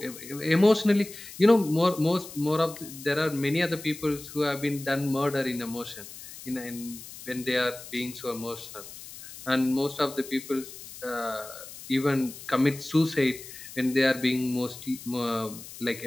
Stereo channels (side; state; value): left; noise; hiss, 14 dB below the sound